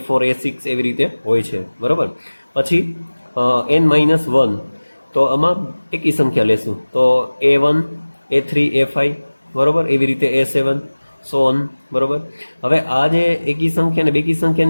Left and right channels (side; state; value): both; inverted; correlation -1.00